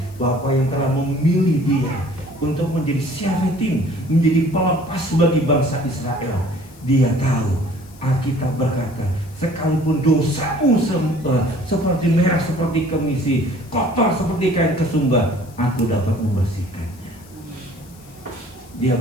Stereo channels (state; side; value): noise; left; hiss, 26 dB below the sound